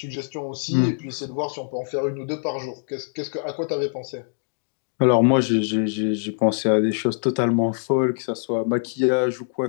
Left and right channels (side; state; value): right; silent; digital silence